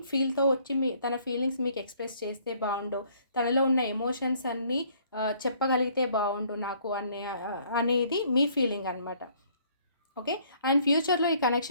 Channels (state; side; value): inverted; both; correlation -0.62